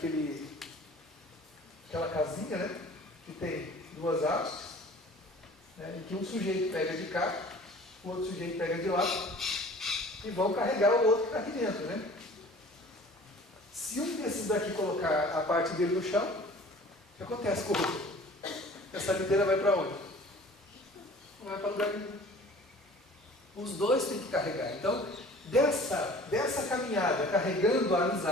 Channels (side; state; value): both; normal; correlation 0.47